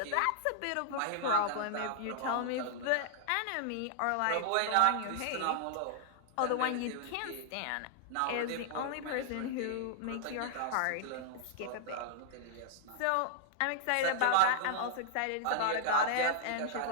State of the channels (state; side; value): different; both; correlation -0.01